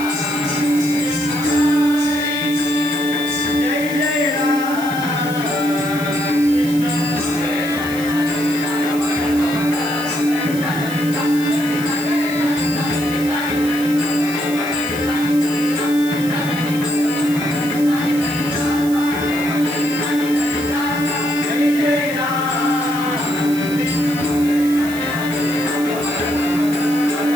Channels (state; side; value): noise; right; hiss, 14 dB below the sound